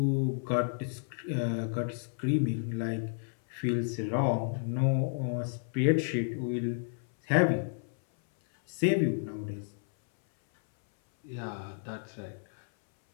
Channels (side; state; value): right; silent; 57 dB below the other